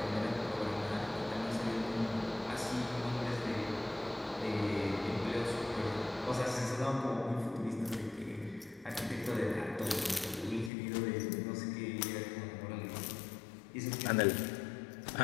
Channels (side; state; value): right; drops out; at 10.7 s